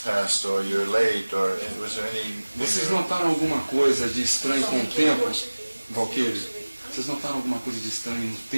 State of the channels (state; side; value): inverted; both; correlation -1.00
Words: passed, or you're late, or was there any... Vocês notaram alguma coisa de estranho com o tempo, Valkyrie? Vocês notaram alguma coisa de estranho no